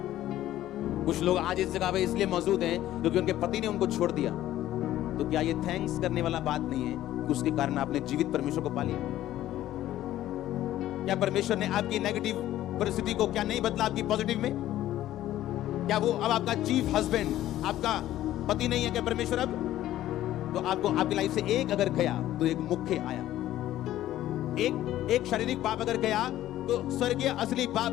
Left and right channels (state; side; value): quieter; right; 13.7 dB